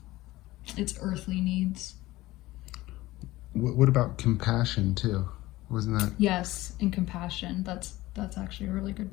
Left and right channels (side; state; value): right; quieter; 18.0 dB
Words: It's earthly needs. What about compassion too? Wasn't that? Yes, and compassion. That's actually a really good